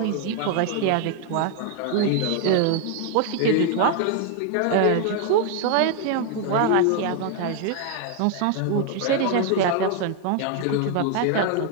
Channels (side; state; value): both; different; correlation 0.01